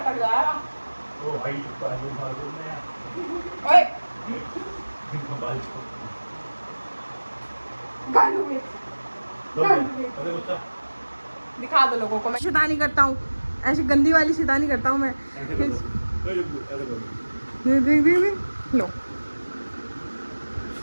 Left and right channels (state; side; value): inverted; both; correlation -1.00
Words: जाएगा। ओ भाई बाजू बाजू में यार। ओए बाजू गालू में अरे गुस्सा दिखा दो लोगों को। मैं शैतानी करता हूँ, ऐसी गंदी वाली शैतानी करता हूँ मैं। ऐसे कर दो। ऐसे कर दे लो।